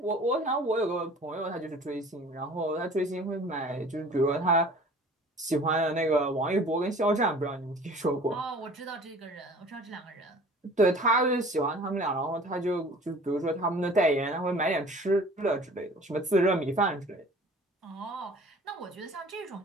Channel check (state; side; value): normal; both; correlation 0.47